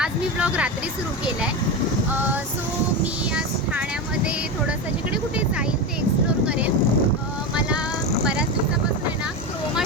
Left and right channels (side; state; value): both; normal; correlation 0.18